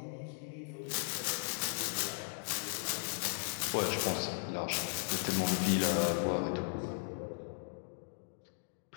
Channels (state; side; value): silent; right; digital silence